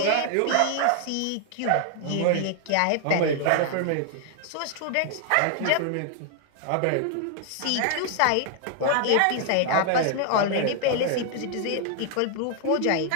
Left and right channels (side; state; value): both; different; correlation 0.00